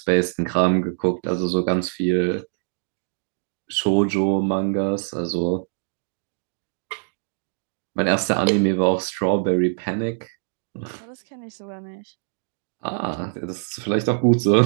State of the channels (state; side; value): silent; left; digital silence